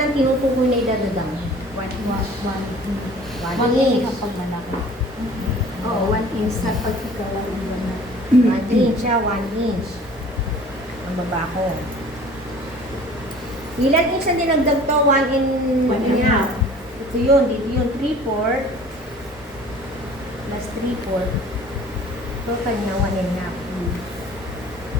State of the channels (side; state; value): both; normal; correlation 0.48